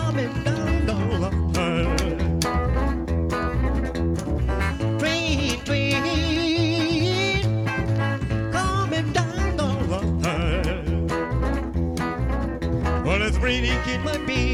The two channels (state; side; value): identical; both; correlation 1.00